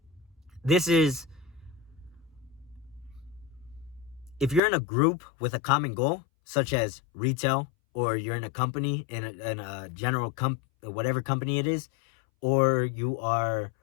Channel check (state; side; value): drops out; right; at 4.6 s